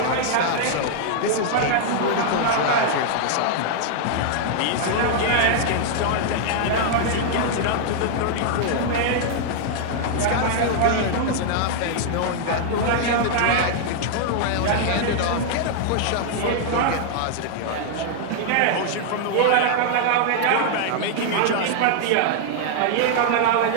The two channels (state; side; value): different; both; correlation -0.01